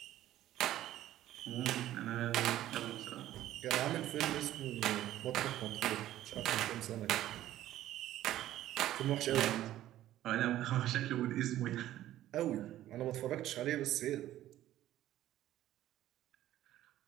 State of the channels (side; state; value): left; quieter; 13.6 dB